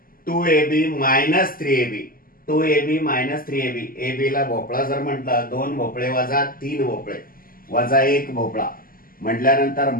2ab minus 3ab. 2ab minus 3ab. ab ला भोपळा जर म्हटलं, 2 भोपळे वजा 3 भोपळे वजा 1 भोपळा म्हटल्यानंतर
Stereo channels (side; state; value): right; late; 0.42 ms